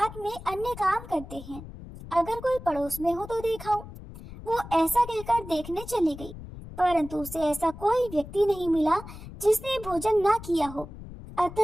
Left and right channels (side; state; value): left; noise; rumble, 14 dB below the sound